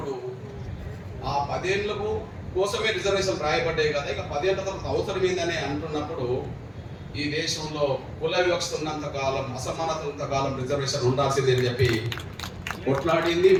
ఆ 10 ఏళ్ళకు కోసమే రిజర్వేషన్ రాయబడ్డాయి కదా, ఇక 10 ఏళ్ళ తర్వాత అవసరం ఏందని అంటున్నప్పుడు ఈ దేశంలో కుల వివక్ష ఉన్నంత కాలం, అసమానత ఉన్నంత కాలం రిజర్వేషన్ ఉండాల్సింది అని చెప్పి కొట్లాడింది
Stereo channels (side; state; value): both; identical; correlation 1.00